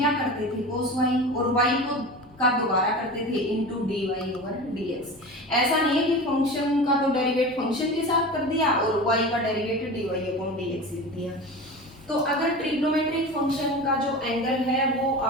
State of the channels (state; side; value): normal; both; correlation 0.31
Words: करते थे, cos y, और y को का दोबारा करते थे इनटू dy ओवर dx। ऐसा नहीं है कि फंक्शन का तो डेरिवेट फंक्शन के साथ कर दिया और y का डेरिवेट dy अपॉन dx लिख दिया। तो अगर ट्रिग्नोमेट्रिक फंक्शन का जो एंगल है वो